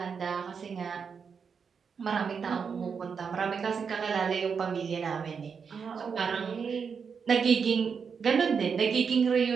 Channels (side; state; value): left; quieter; 6.1 dB